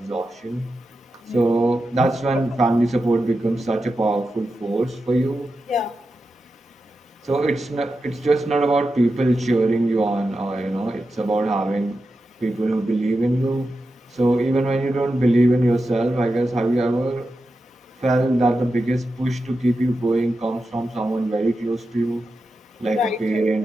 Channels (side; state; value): both; normal; correlation 0.90